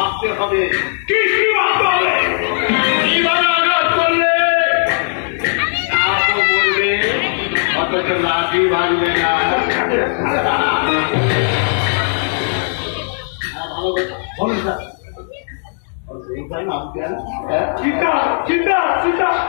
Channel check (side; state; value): right; silent; digital silence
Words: হবে কি ভাবতে হবে, কিভাবে আঘাত করলে বলবে, অথচ লাঠি ভাঙবে না। ভালো বলুন স্যার, নাম সীতা, সীতা, সীতা,